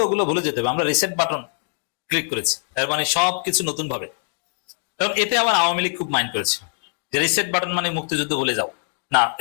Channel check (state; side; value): silent; right; digital silence